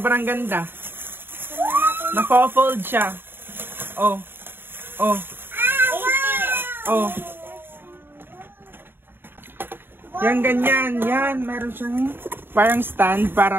ganda. Naka-fold siya. Oh. Oh. Oh. Yan, ganyan. Yan. Meron siyang parang stand para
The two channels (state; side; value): late; left; 0.10 ms